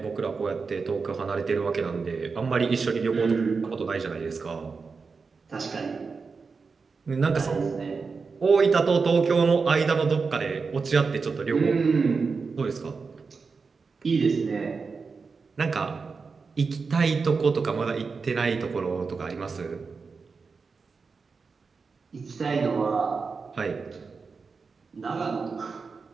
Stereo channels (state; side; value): quieter; left; 4.8 dB